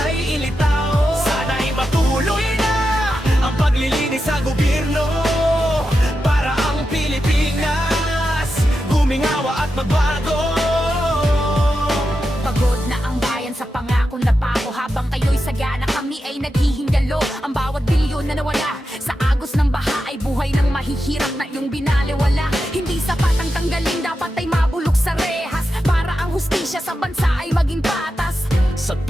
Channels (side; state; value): both; normal; correlation 0.89